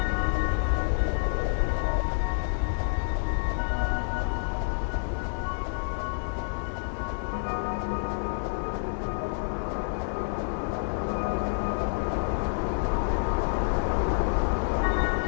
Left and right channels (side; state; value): right; silent; 59 dB below the other